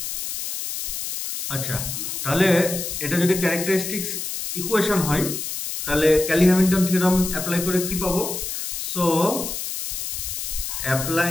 আচ্ছা, তাহলে এটা যদি characteristics equation হয় তাহলে ক্যালি-হ্যামিল্টন থিওরাম অ্যাপ্লাই করে কি পাবো? So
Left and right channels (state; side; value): noise; left; hiss, 5 dB below the sound